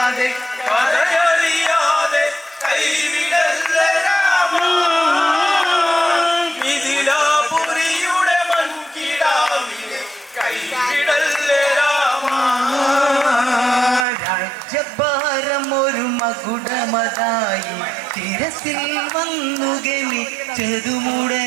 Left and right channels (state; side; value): drops out; left; at 14.1 s